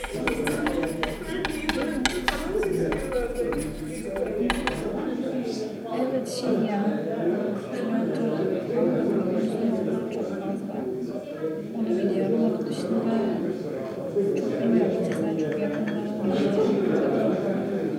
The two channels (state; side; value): identical; both; correlation 1.00